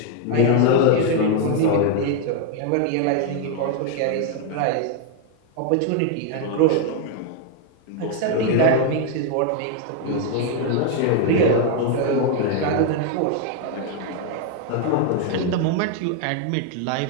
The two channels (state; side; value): different; both; correlation 0.01